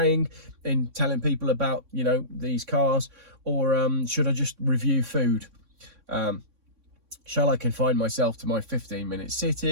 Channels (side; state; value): left; late; 3.6 ms